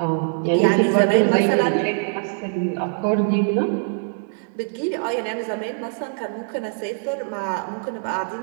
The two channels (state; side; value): silent; left; digital silence